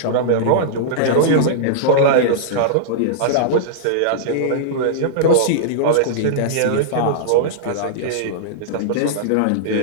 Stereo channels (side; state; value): both; different; correlation -0.02